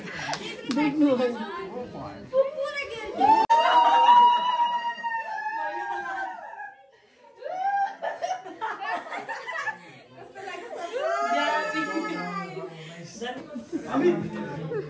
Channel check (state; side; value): identical; both; correlation 1.00